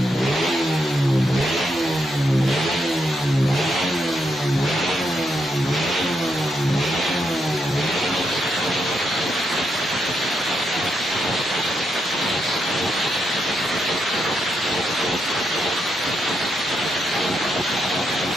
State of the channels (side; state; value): both; normal; correlation 0.81